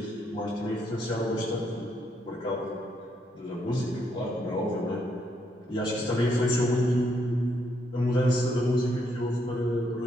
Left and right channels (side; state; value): both; normal; correlation 0.75